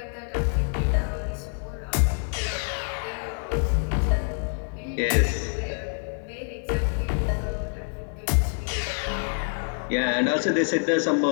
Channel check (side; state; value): right; silent; 57 dB below the other